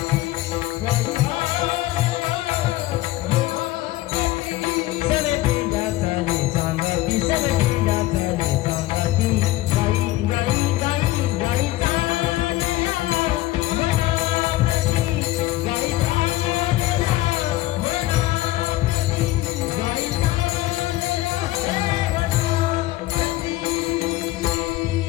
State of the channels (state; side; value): quieter; right; 16.9 dB